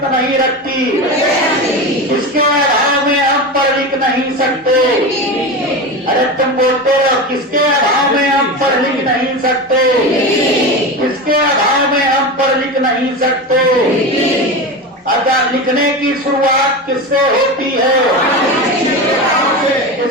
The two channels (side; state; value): both; normal; correlation 0.23